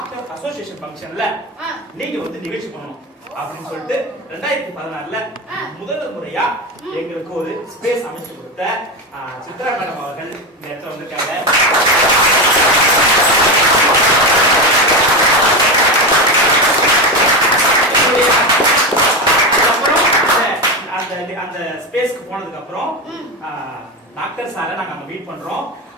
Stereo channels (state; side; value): normal; both; correlation 0.16